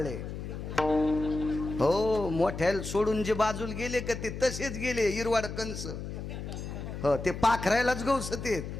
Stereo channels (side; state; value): left; noise; hum, 7 dB below the sound